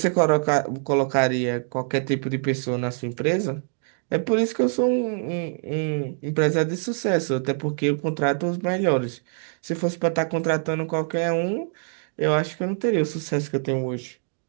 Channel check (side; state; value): left; silent; 62 dB below the other